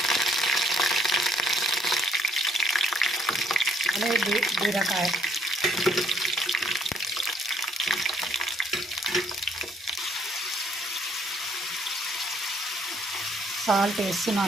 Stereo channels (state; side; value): normal; both; correlation 0.66